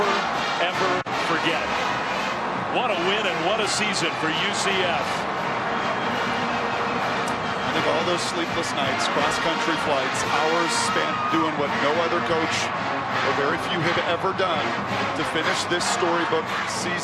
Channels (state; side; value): identical; both; correlation 1.00